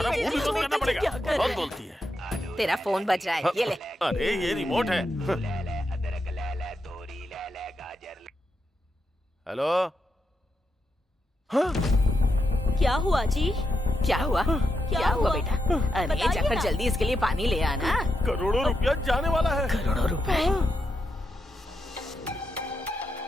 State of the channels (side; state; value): both; normal; correlation 0.85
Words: मुंह भी बंद करना पड़ेगा। बहुत बोलती है। तेरा फोन बज रहा है, ये ले। अरे ये रिमोट है। हेलो। हाँ? क्या हुआ जी? क्या हुआ बेटा? अरे जाकर जल्दी इसके लिए पानी ले आना। करोड़ों रुपया जाने वाला है। करोड़ों रुपए?